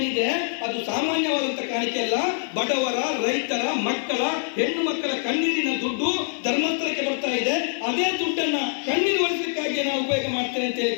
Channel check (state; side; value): silent; right; 62 dB below the other